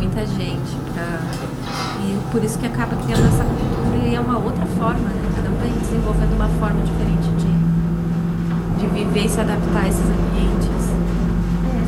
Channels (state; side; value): identical; both; correlation 1.00